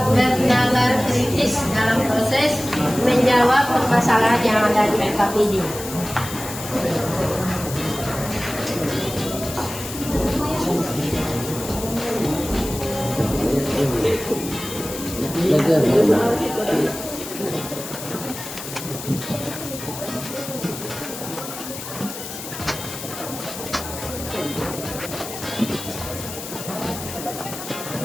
bernalar kritis dalam proses menjawab permasalahan yang ada di FKPD.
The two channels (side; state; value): left; noise; hiss, 10 dB below the sound